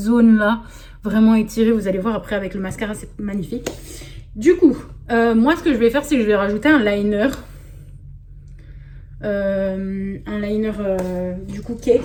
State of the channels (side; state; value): both; identical; correlation 1.00